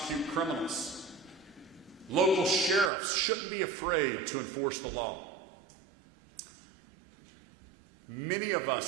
criminals. Local sheriffs shouldn't be afraid to enforce the law. Many of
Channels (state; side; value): drops out; left; at 2.9 s